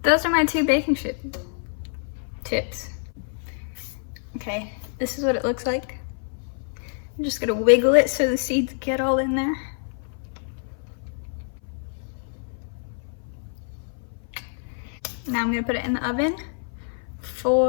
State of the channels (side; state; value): right; silent; 57 dB below the other